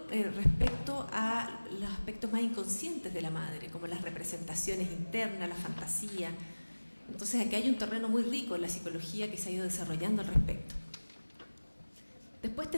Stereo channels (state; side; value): inverted; both; correlation -1.00